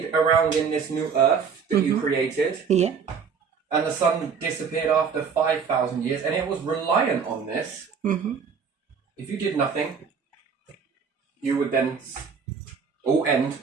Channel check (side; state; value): left; quieter; 6.2 dB